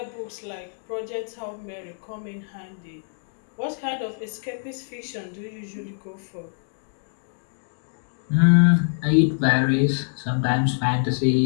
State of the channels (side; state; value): right; silent; digital silence